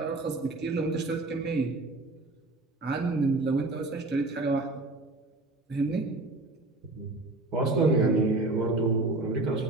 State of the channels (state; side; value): quieter; left; 3.0 dB